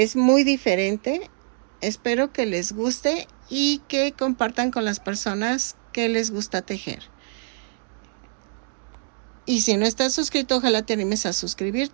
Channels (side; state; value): left; silent; digital silence